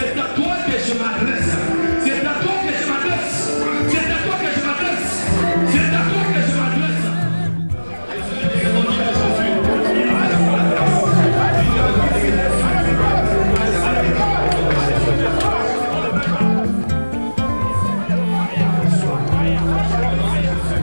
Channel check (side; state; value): both; inverted; correlation -1.00